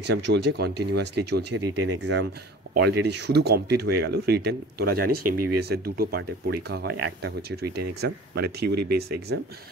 চলছে, কন্টিনিউয়াসলি চলছে। রিটেন এক্সাম অলরেডি শুধু কমপ্লিট হয়ে গেল। রিটেন তোরা জানিস MBBS-এর দুটো পার্টে পরীক্ষা হয়, একটা হচ্ছে রিটেন এক্সাম মানে থিওরি বেস এক্সাম,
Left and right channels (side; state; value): both; normal; correlation 0.42